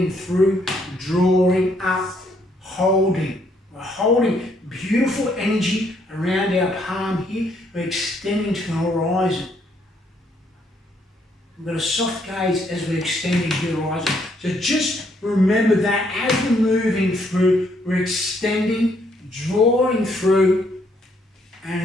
through, drawing up, holding. We're holding beautiful energy around our palm here. We're extending to the horizon. We've got a soft gaze as we're extending to the horizon. So just remember that as we're moving through, we're extending, drawing through,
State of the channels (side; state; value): both; normal; correlation 0.70